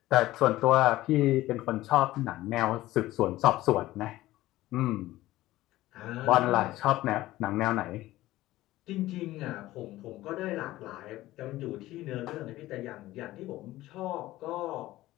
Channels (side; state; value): right; quieter; 16.5 dB